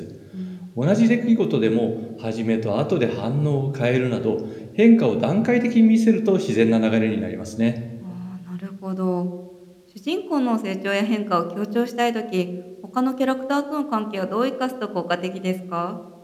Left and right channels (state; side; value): identical; both; correlation 1.00